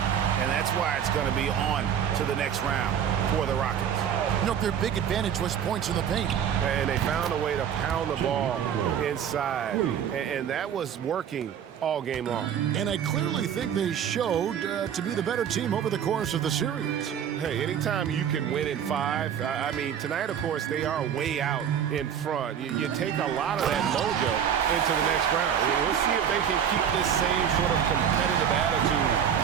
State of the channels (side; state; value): left; quieter; 8.7 dB